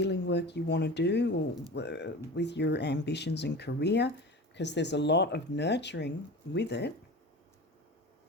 work you want to do, or with your ambitions and career, because there's a lot of nurturing with it.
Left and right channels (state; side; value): normal; both; correlation 0.33